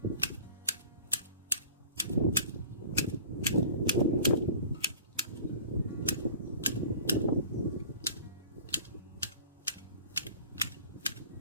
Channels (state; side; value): inverted; both; correlation -0.43